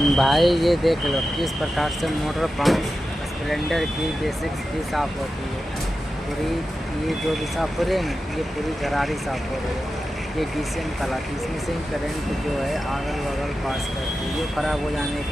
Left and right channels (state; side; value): normal; both; correlation 0.92